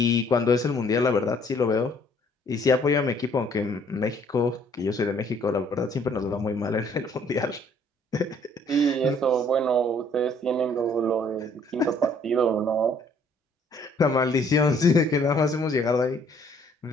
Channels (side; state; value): both; normal; correlation 0.61